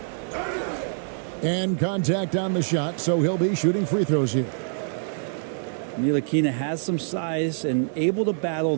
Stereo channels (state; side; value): silent; left; digital silence